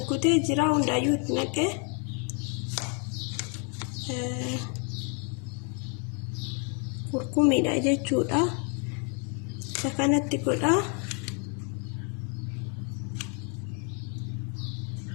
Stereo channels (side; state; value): right; quieter; 38.6 dB